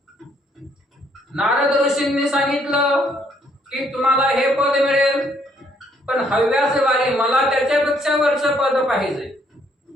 नारद ऋषींनी सांगितलं की तुम्हाला हे पद मिळेल, पण हव्यास वारी मला त्याच्यापेक्षा वरचं पद पाहिजे.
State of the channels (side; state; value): both; normal; correlation 0.68